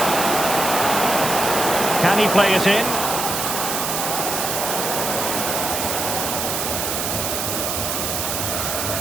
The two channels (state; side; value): noise; right; hiss, 1 dB below the sound